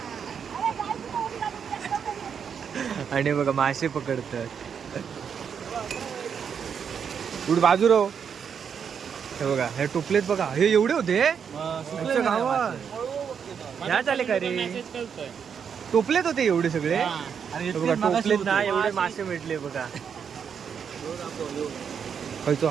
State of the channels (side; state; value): left; quieter; 7.2 dB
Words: आणि बघा मासे पकडतात. कुठे बाजू राहो. हे बघा हे टोपलेत बघा, हे एवढे होते गावात. ह्या चाले का रे, टोपलेत होते एवढे सगळे. बघा टोपलेत ना एवढे मासे भेटले बघा. खायचो